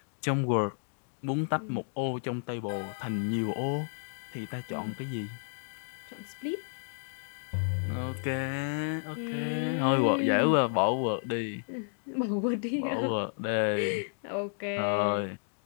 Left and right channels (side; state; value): right; silent; digital silence